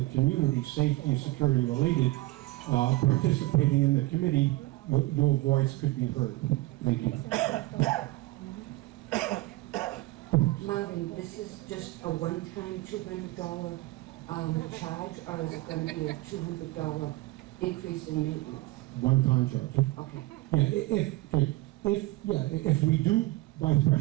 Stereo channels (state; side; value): quieter; left; 19.5 dB